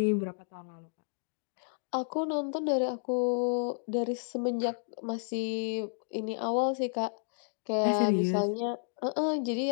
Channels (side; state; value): right; silent; digital silence